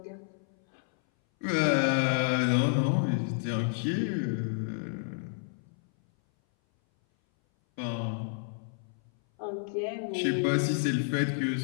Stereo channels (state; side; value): silent; right; 58 dB below the other